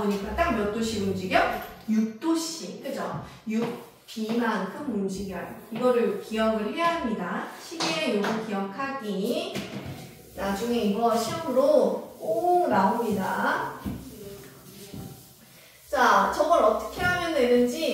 딱 몇 도씩 움직여? 6도씩. 그죠? 6B만큼 움직여요. 이거를 기억을 해야 합니다. 시계의 요거 기억하기. 나중에 이거 시험으로 꼭 나옵니다. 자, 저걸 어떻게 하면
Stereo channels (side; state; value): both; identical; correlation 1.00